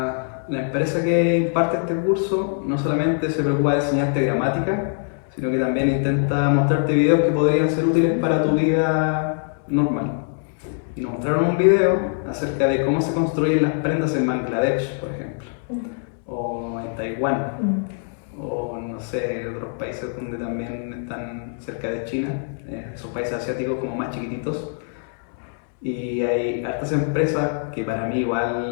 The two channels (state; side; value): silent; right; 62 dB below the other